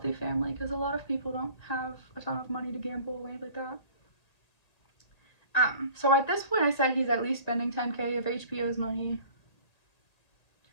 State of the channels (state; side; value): late; right; 1.9 ms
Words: family, because a lot of people don't have a ton of money to gamble away like that. So at this point I said he's at least spending $10K of HBO's money.